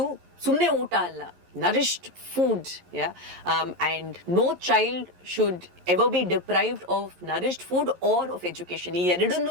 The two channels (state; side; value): late; left; 11 ms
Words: ಸುಮ್ಮನೆ ಊಟ ಅಲ್ಲ, nourished food, yeah, and no child should ever be deprived of nourished food or of education. ಈ